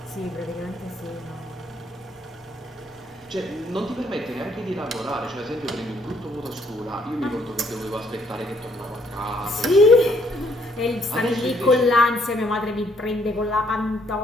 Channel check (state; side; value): normal; both; correlation 0.68